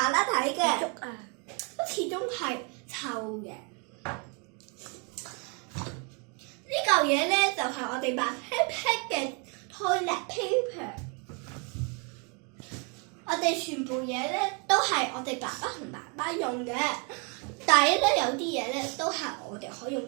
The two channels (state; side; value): quieter; left; 35.0 dB